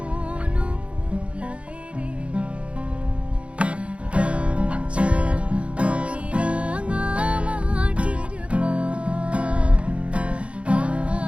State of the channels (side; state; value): left; late; 0.061 ms